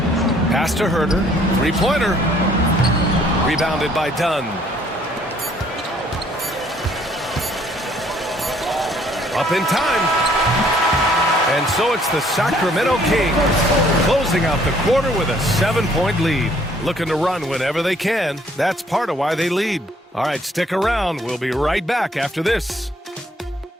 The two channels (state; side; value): normal; both; correlation 0.62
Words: Pass to Herder. Three-pointer. Rebounded by Dunn. Up in time. And so it's the Sacramento Kings closing out the quarter with a 7-point lead. Looking to run whenever they can. That's part of why they lead. All right, stick around. We'll be right back after this.